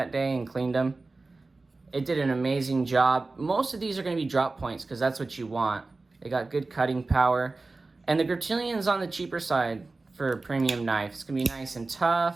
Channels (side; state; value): left; quieter; 3.5 dB